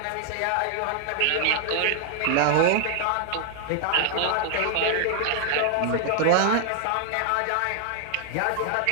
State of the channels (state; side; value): different; both; correlation 0.00